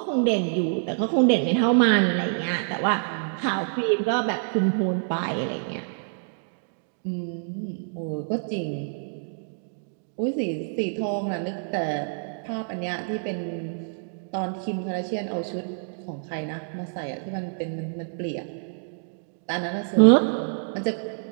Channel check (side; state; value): left; silent; digital silence